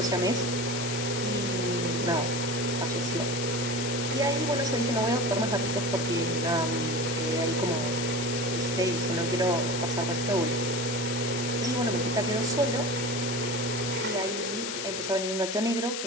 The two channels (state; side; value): noise; left; hiss, 4 dB below the sound